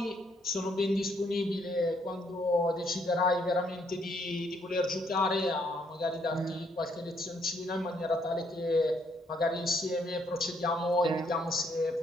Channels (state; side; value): normal; both; correlation 0.70